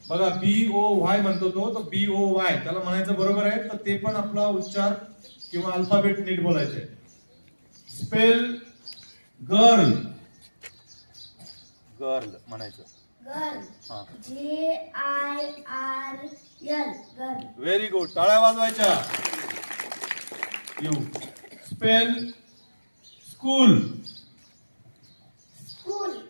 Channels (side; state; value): both; inverted; correlation -1.00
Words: बघा BOY म्हणतो तो, तर BOY त्याला म्हणायचं बरोबर आहे. तर ते पण आपला उच्चार किंवा अल्फाबेट नीट बोलायचे. Spell girl. गर्ल म्हणायचं. गर्ल. हा, GIRL. गर्ल. Very good. टाळ्या वाजवायच्या. You. Spell school. School.